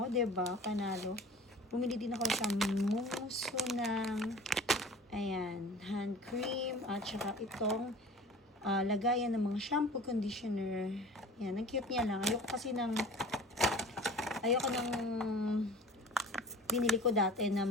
diba? Panalo. Bumili din ako sa Mumusu ng ayan, hand cream at saka itong lagayan ng mga shampoo, conditioner. Ayan, ang cute niya lang. Ayoko ng binili ko dati na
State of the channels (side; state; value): both; normal; correlation 0.42